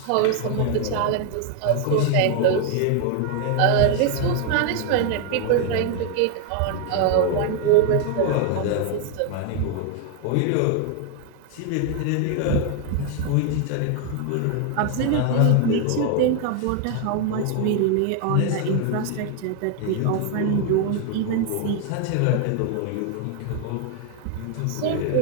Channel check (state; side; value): different; both; correlation 0.00